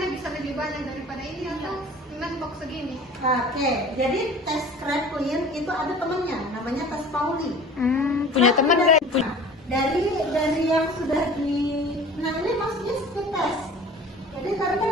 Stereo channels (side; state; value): both; normal; correlation 0.43